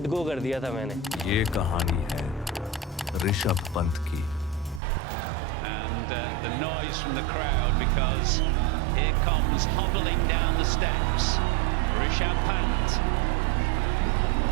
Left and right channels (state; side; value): drops out; left; at 4.8 s